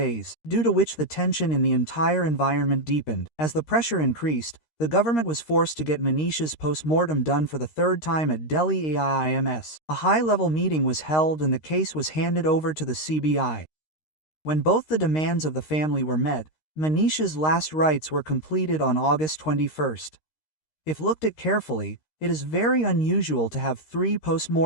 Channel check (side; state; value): right; late; 13 ms